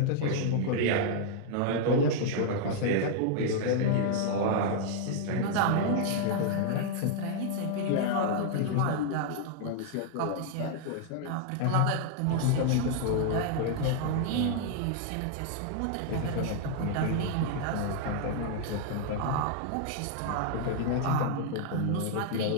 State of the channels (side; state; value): both; different; correlation 0.00